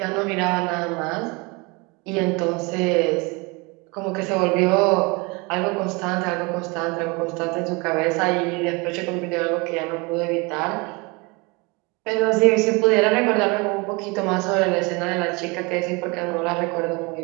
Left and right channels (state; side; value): quieter; left; 27.5 dB